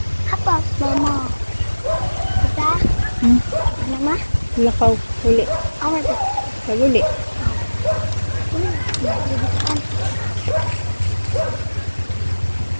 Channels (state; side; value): inverted; both; correlation -1.00